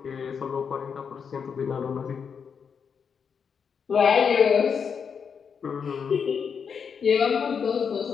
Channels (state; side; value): quieter; right; 6.6 dB